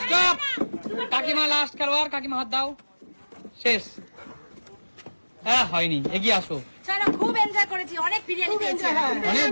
স্টপ। কাকিমা লাস্ট খেলোয়াড়, কাকিমা হাত দাও। শেষ। হ্যাঁ হয়নি, এগিয়ে আসো। চলো, খুব এনজয় করেছি, অনেক বিরিয়ানি পেয়েছি। অনেক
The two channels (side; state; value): both; inverted; correlation -1.00